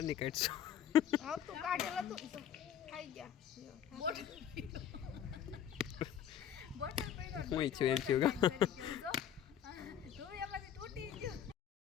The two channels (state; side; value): quieter; right; 9.3 dB